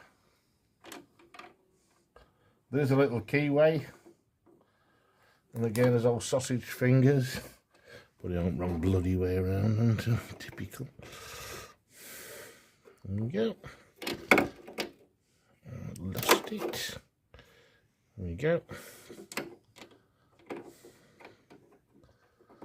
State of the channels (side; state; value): both; identical; correlation 1.00